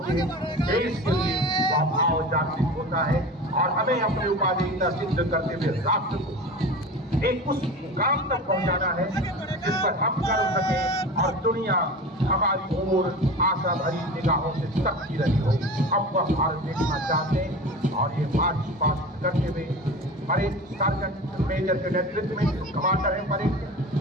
है देश के लिए, वह भाव जागृत होता है और हमें अपनी उपाधिकता सिद्ध करते हुए राष्ट्र को एक उस मुकाम तक पहुंचाना है जिस पर हम कर सके और दुनिया हमारी ओर आशा भरी निगाहों से तकती रही हो। हम वह भारत देखना चाहते हैं और ये मार्च पास्ट करते हुए परेड सार्जेंट मेजर के नेतृत्व में कमांडर है परेड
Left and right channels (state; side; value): normal; both; correlation 0.33